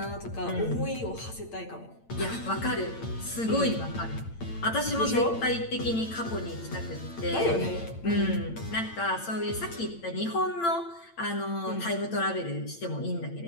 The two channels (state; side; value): late; right; 8.8 ms